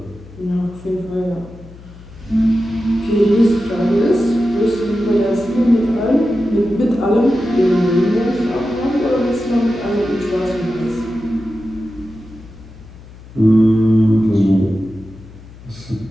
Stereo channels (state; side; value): noise; left; hum, 19 dB below the sound